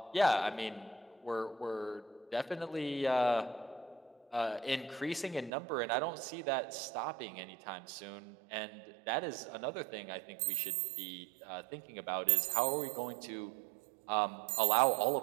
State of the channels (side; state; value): left; drops out; at 5.5 s